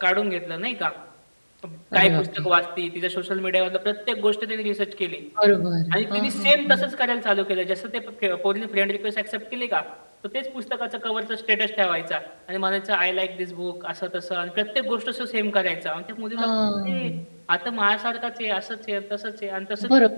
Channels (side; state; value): both; inverted; correlation -1.00